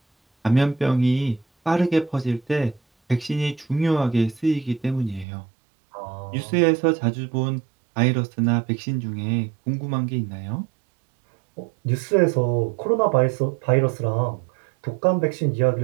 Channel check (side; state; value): left; drops out; at 5.2 s